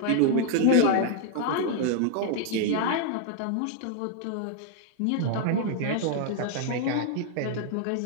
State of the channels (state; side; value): different; both; correlation 0.00